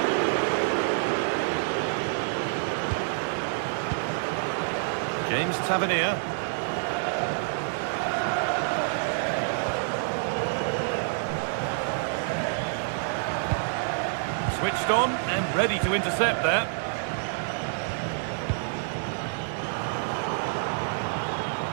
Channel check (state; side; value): silent; left; 57 dB below the other